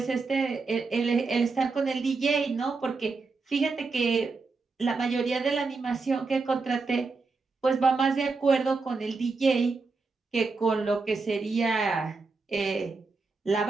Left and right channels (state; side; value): quieter; left; 4.1 dB